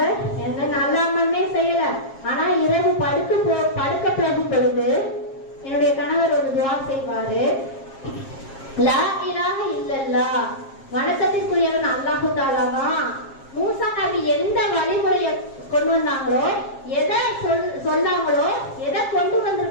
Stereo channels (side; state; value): right; late; 7.5 ms